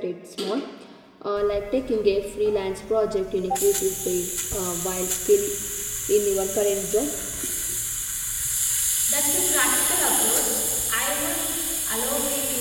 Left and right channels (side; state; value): both; identical; correlation 1.00